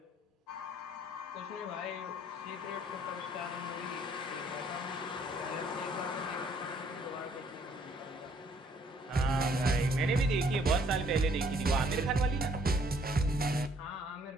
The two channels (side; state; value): both; normal; correlation 0.63